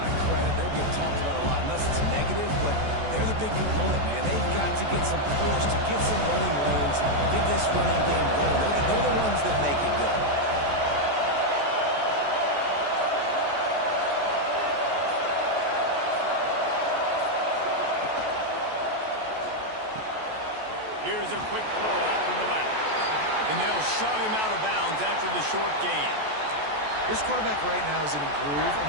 of credit. They don't get talked about a lot unless it's negative, but they're the big component, man. They've got to get some push, to get some running lanes, get this running game going. They're the ones that make it go. Here's a quick throw out to the left. And they'll shove him out of bounds after the short gain. This quarterback right now is in a groove, and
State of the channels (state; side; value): late; left; 14 ms